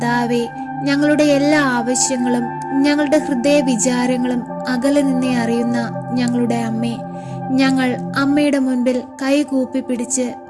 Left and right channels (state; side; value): identical; both; correlation 1.00